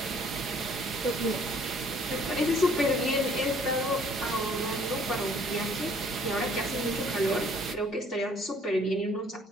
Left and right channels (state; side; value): normal; both; correlation 0.59